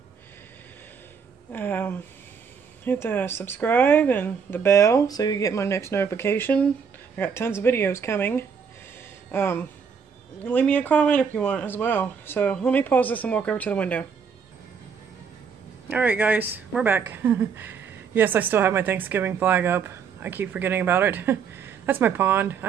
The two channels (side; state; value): left; quieter; 6.4 dB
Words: Hit the subscribe and the bell so you get my next notification. I got tons of videos coming. Leave me a comment if you want as well. So let me pause this and walk over to the window. Alright guys, we're back. Yes, I still have my Thanksgiving flag up. I keep forgetting about it. That's my pond.